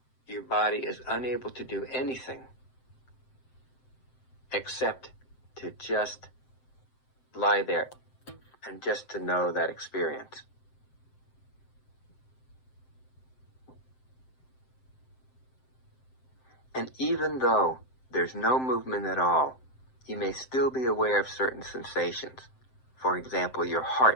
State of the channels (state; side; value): late; right; 7.7 ms